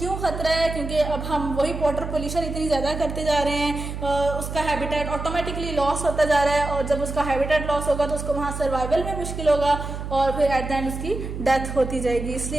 खतरा है, क्योंकि अब हम वही वाटर पोल्यूशन इतनी ज़्यादा करते जा रहे हैं, उसका हैबिटेट ऑटोमेटिकली लॉस होता जा रहा है और जब उसका हैबिटेट लॉस होगा तो उसको वहाँ सर्वाइवल में मुश्किल होगा और फिर एट द एंड उसकी डेथ होती जाएगी।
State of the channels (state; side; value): noise; right; hum, 6 dB below the sound